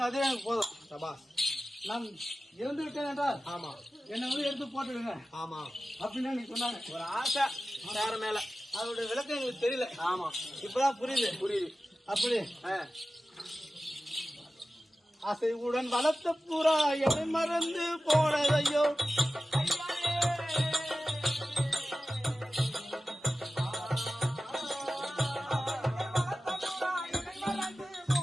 அதே எனக்கு போதும். நான் இறந்து விட்டேன் என்றால் என்னை வந்து எடுத்து போட்டுடுங்க அப்படின்னு நீங்க சொன்னாங்க. ஒரு ஆசை வேற மேல, அதோட விளக்கம் எங்களுக்கு தெரியல. இப்பதான் புரியுது. அப்படி அசைவுடன் வளர்த்த புறா என்னை மறந்து போனதையோ.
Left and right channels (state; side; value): normal; both; correlation 0.94